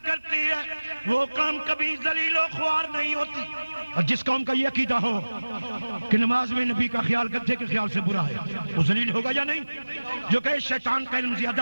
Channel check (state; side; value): inverted; both; correlation -1.00